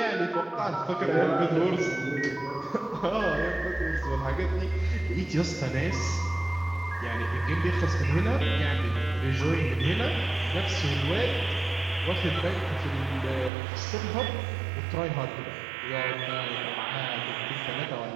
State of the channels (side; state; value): left; drops out; at 13.5 s